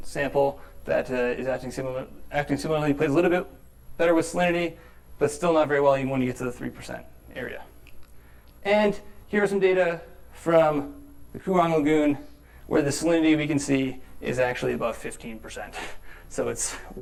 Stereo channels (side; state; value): both; identical; correlation 1.00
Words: sample that is acting similarly, plays a little bit better with salinity, but still not very well even when you get to the 3% area. And here are some data from the Coorong Lagoon, where the salinity we can see is actually above 15%. So it's